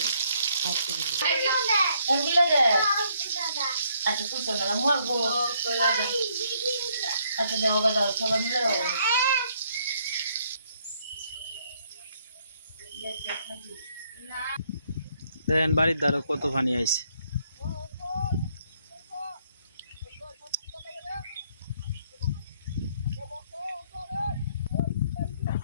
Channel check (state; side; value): inverted; both; correlation -0.69